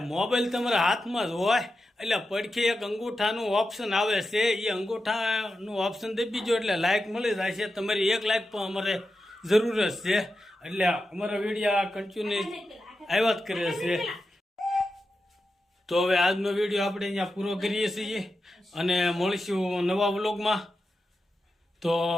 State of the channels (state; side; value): normal; both; correlation 0.90